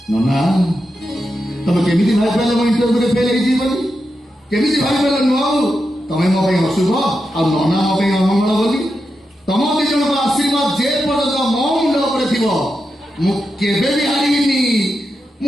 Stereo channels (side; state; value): both; normal; correlation 0.88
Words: ନନା ତମେ କେମିତି ଭାବିପାରିଲ ମୋ ଇଣ୍ଟରଭ୍ୟୁରେ ଫେଲ୍ ହେଇଯିବି ବୋଲି? କେମିତି ଭାବିପାରିଲ ନୁହଁ ତମେ ମୋ ପାଇଁ ଅଶୁଭ ଆଉ ନନା ମୋ ପାଇଁ ଅମଙ୍ଗଳ ବୋଲି? ତମ ଦି ଜଣଙ୍କ ଆଶୀର୍ବାଦ ଯେ ପର୍ଯ୍ୟନ୍ତ ମୋ ମୁଣ୍ଡ ଉପରେ ଥିବ ମୁଁ କେବେ ବି ହାରିବିନି।